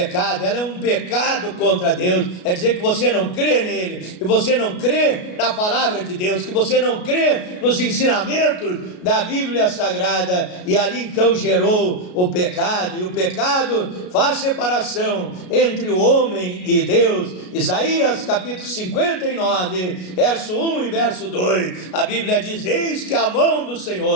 ela é um pecado contra Deus. É dizer que você não crê nele, que você não crê na palavra de Deus, que você não crê nos ensinamentos da Bíblia Sagrada, e ali então gerou o pecado, e o pecado faz separação entre o homem e Deus. Isaías capítulo 59, verso 1 e verso 2, a Bíblia diz: eis que a mão do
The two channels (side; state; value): right; late; 33 ms